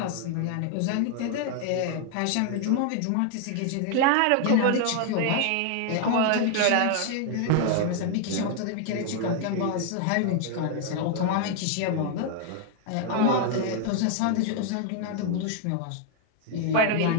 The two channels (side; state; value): both; different; correlation 0.00